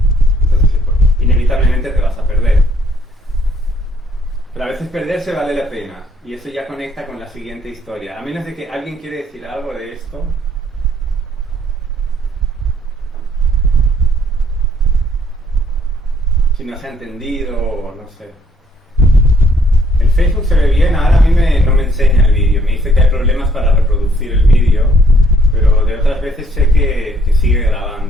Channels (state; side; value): normal; both; correlation 0.66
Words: Entonces, inevitablemente te vas a perder. Pero a veces perderse vale la pena. Y eso ya conecta con la siguiente historia. A menos de que alguien quiere decir algo de esto. Si no se ha entendido o no sé. El Facebook se ve bien, ahora a mí no me enseña el vídeo. Me dice que hay problemas para reproducir el vídeo. Pero de otras veces sé que sigue